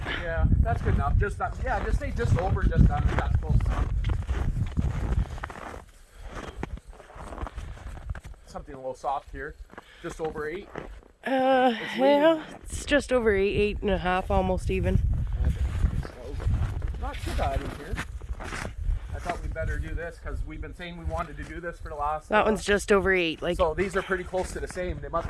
Yeah, that's good enough. Just yeah, just say just over, just under. That's close enough. Something a little soft here. Just over 8. Yeah, it's just over 8, 8.5, almost even. Not too bad in here. I thought we'd better do this because we've been saying we wanted to do this for the last. That one's just over 8. Like. So these are pretty close to the same. They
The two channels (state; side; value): identical; both; correlation 1.00